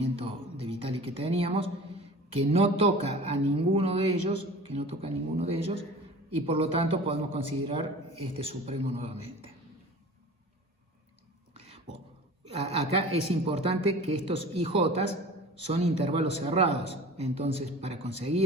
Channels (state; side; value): normal; both; correlation 0.40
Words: de Vitali que teníamos, que no toca a ninguno de ellos, y por lo tanto podemos considerar este supremo nuevamente. Bueno, acá es importante que estos IJs son intervalos cerrados, entonces para